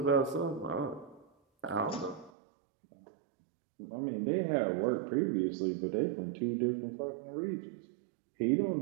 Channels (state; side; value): drops out; left; at 2.3 s